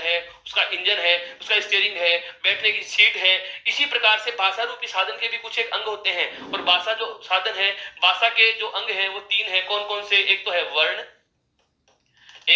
उसका इंजन है, उसका स्टीयरिंग है, बैठने की सीट है। इसी प्रकार से भाषा रूपी साधन के भी कुछ एक अंग होते हैं। और भाषा जो साधन है, भाषा के जो अंग हैं वो तीन है। कौन कौन से, एक तो है वर्ण,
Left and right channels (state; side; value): identical; both; correlation 1.00